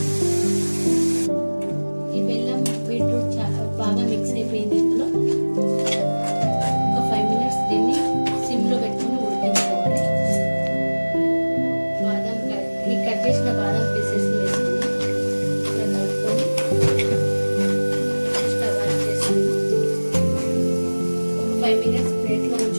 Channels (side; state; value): both; inverted; correlation -1.00